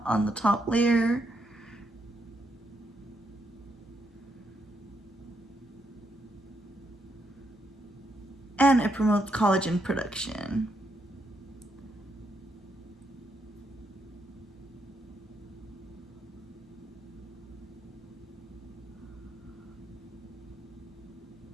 top layer. And it promotes collagen production.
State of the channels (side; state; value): both; normal; correlation 0.78